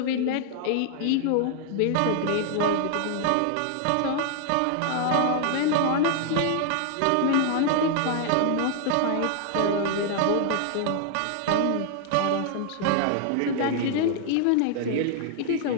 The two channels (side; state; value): both; different; correlation 0.00